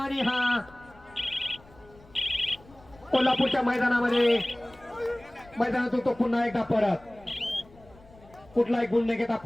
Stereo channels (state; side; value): noise; left; rumble, 25 dB below the sound